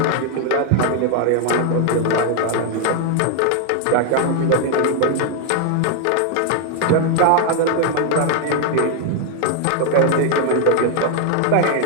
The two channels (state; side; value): different; both; correlation 0.00